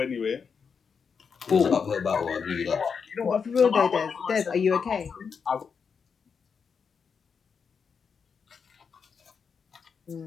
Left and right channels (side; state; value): right; quieter; 6.1 dB